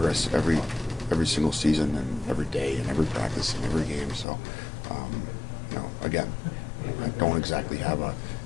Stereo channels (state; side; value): drops out; right; at 4.2 s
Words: every single season and every day and every practice and every game. So, again, I don't exactly have